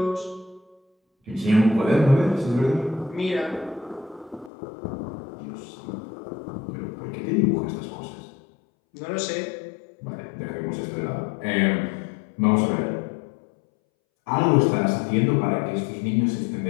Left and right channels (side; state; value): right; drops out; at 4.5 s